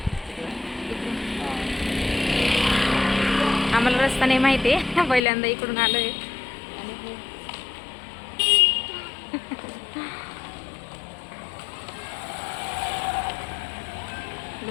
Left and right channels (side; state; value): right; drops out; at 5.2 s